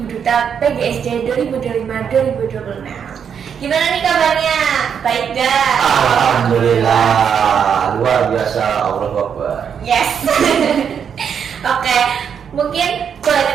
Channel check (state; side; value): quieter; left; 7.5 dB